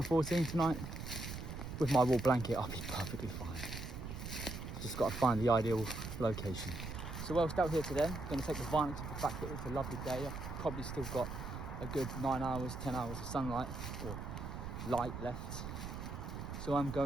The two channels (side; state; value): right; noise; rumble, 7 dB below the sound